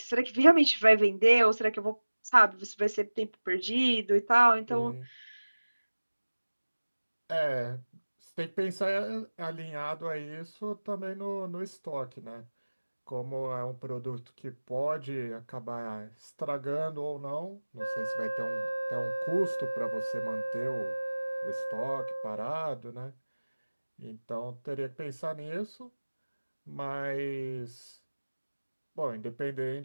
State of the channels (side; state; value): both; inverted; correlation -1.00